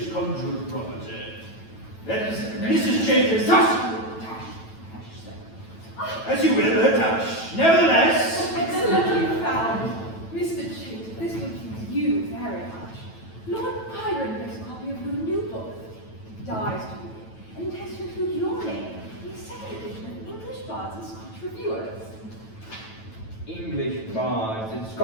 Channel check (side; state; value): right; late; 9.1 ms